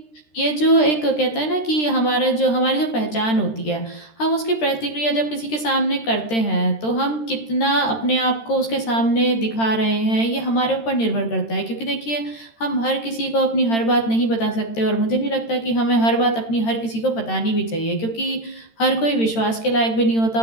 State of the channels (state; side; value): late; right; 13 ms